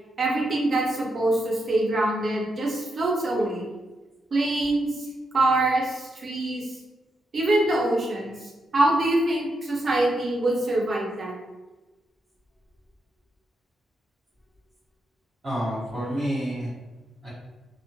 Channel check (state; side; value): normal; both; correlation 0.83